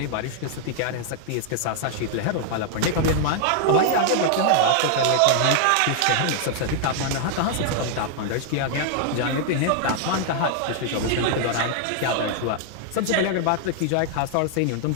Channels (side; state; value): both; different; correlation 0.00